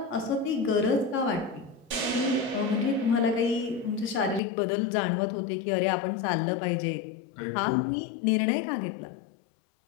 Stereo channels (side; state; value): right; drops out; at 4.4 s